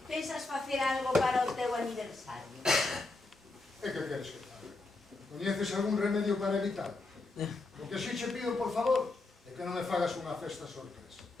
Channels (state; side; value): quieter; right; 3.3 dB